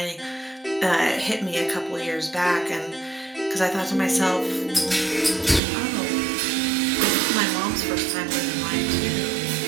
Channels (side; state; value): left; drops out; at 5.6 s